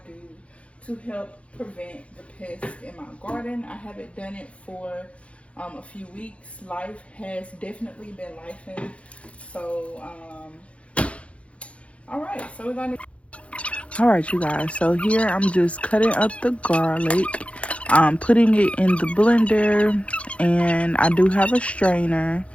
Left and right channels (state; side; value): late; right; 0.062 ms